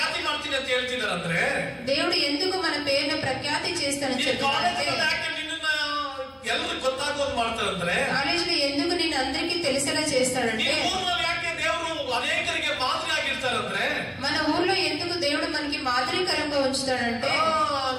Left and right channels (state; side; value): identical; both; correlation 1.00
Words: ಮಾಡ್ತೀನಿ ಅಂತ ಹೇಳ್ತಿದಾರಂದ್ರೆ, దేవుడు ఎందుకు మన పేరును ప్రఖ్యాతి చేస్తానని చెప్తారంటే, ಎಲ್ಲರೂ ಗೊತ್ತಾಗೋದು ಮಾಡ್ತಾರಂದ್ರೆ, కాలేజీలో ఎందుకు నేను అందరికీ తెలిసేలా చేస్తాడంటే, ಯಾಕೆ ದೇವರು ಅನೇಕರಿಗೆ ಮಾದರಿ ಆಗಿರ್ತಾರಂದ್ರೆ, మన ఊర్లో ఎందుకు దేవుడు మనకి మాదిరికరంగా ఉంచుతాడంటే,